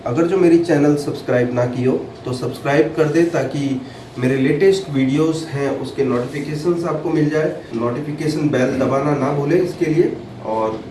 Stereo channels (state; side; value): identical; both; correlation 1.00